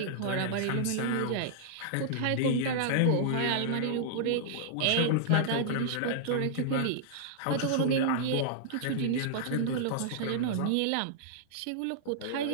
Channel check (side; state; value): both; different; correlation -0.01